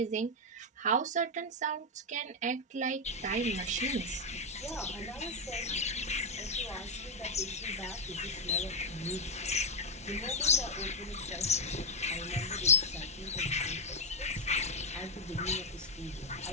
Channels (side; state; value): both; normal; correlation 0.03